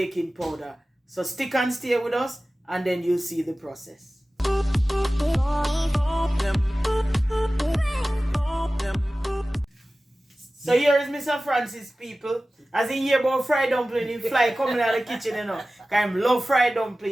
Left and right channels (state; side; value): normal; both; correlation 0.96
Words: powder. So stick and stay with us and then you'll see the process. So here is Mr. Francis, people. As he hear about fried dumpling, he fly coming out of the kitchen, you know. Because he love fried